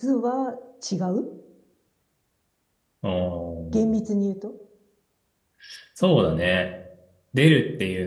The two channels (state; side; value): identical; both; correlation 1.00